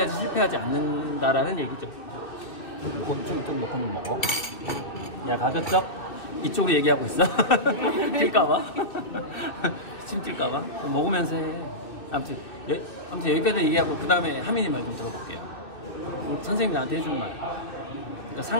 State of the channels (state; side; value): late; right; 2.7 ms